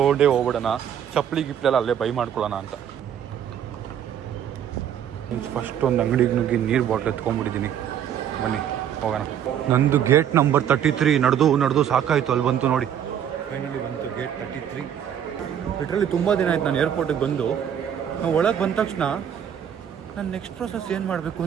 ಹೋಗ್ಬಿಡೋಣ, ಚಪ್ಪಲಿ ಗಿಪ್ಲೆಲ್ಲ ಅಲ್ಲೇ ಬೈ ಮಾಡ್ಕೊಳ್ಳೋಣ ಅಂತ. ಫಸ್ಟ್ ಒಂದು ಅಂಗಡಿಗೆ ನುಗ್ಗಿ ನೀರು ಬಾಟ್ಲ್ ಎತ್ಕೊಂಡ್ಬಿಟ್ಟಿದ್ದೀನಿ. ಬನ್ನಿ ಹೋಗೋಣ. ನಂದು ಗೇಟ್ ನಂಬರ್ 33 ನಡೆದು ಸಾಕಾಯಿತು. ಅಲ್ಲಿ ಬಂತು ನೋಡಿ, ಫೈನಲಿ ಬಂತು ಗೇಟ್ 33. ಲಿಟ್ರಲಿ ತುಂಬ ದಿನ ಆಯ್ತು ನಾನು ಏರ್ಪೋರ್ಟಿಗೆ ಬಂದು. ನಾವು ಒಳಗೆ ಬಂದ ತಕ್ಷಣ ನಾನು ನೆಕ್ಸ್ಟ್ ಪ್ರೊಸೆಸ್ ಏನು ಮಾಡಬೇಕು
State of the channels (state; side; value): quieter; left; 9.3 dB